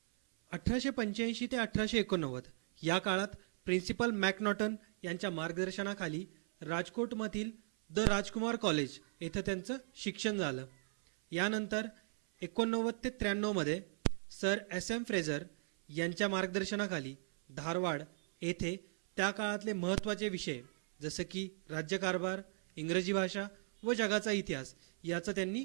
1885 ते 1889 या काळात प्रिन्सिपल मॅकनॉटन यांच्या मार्गदर्शनाखाली राजकोटमधील द राजकुमार कॉलेज येथे त्यांचं शिक्षण झालं. यानंतर 89 ते 93 मध्ये सर SM फ्रेझर यांच्या मार्गदर्शनाखाली धारवाड येथे त्या काळातले महत्त्वाचे विषय जसं की राज्यकारभार, इंग्रजी भाषा व जगाचा इतिहास याचं त्यांनी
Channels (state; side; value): silent; left; 53 dB below the other